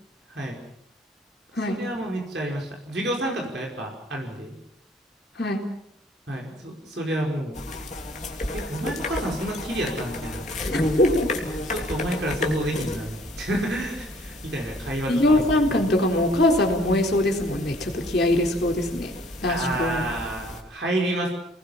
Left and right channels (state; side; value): normal; both; correlation 0.58